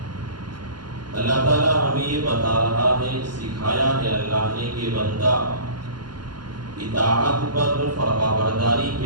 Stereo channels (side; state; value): left; late; 0.71 ms